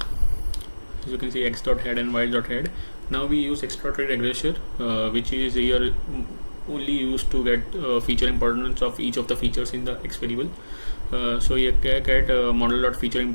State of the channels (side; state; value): both; inverted; correlation -1.00